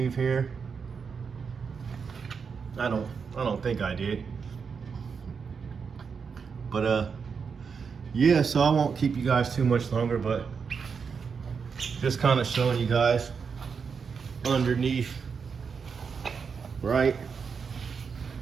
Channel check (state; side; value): quieter; left; 5.9 dB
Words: here. I don't think I did. But yeah, so I won't keep you guys too much longer, but just kind of showing you guys underneath, right?